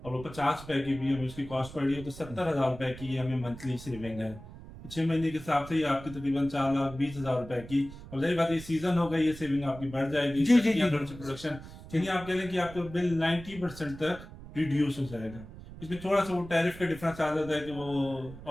और वो 50 रुपए की भी हमें उसकी कॉस्ट पड़ रही है तो 70,000 रुपए की हमें मंथली सेविंग है। 6 महीने के हिसाब से ये आपकी तकरीबन 4,20,000 रुपए की, और जाहिर बात ये सीजन होगा, ये सेविंग आपकी बढ़ जाएगी। जी, जी, जी। प्रोडक्शन चलिए आप कह लें कि आपका बिल 90% तक रिड्यूस हो जाएगा। इसमें थोड़ा सा वो टैरिफ का डिफरेंस आ जाता है कि वो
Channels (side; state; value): right; noise; rumble, 15 dB below the sound